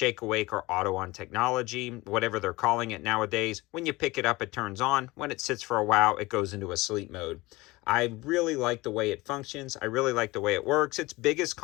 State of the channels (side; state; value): right; quieter; 21.4 dB